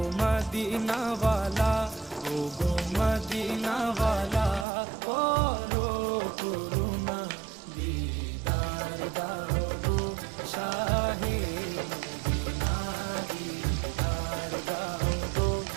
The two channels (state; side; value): drops out; left; at 4.7 s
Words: মদিনাওয়ালা, ও গো মদিনাওয়ালা, করো করুণা দিদার দাও গো শাহে মদিনা, দিদার দাও গো